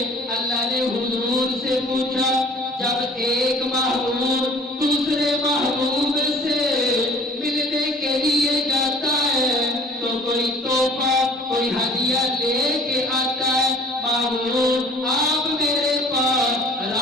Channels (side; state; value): both; normal; correlation 0.51